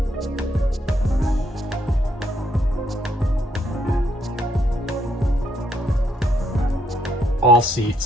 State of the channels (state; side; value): normal; both; correlation 0.74